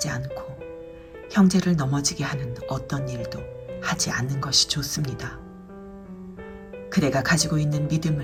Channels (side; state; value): both; identical; correlation 1.00